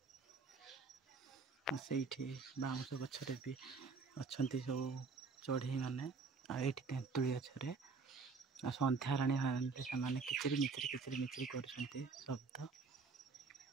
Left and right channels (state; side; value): quieter; left; 4.5 dB